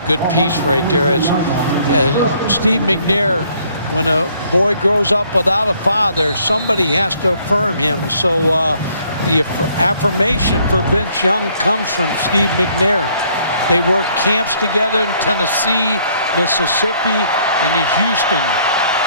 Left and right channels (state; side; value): inverted; both; correlation -0.64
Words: good piece right there. As Steve McNair, when a boy grows up without a father, somebody has to affirm him. So the affirmation for Vince Young comes from Steve McNair. They work camps together in Tennessee, Mississippi, and in Houston.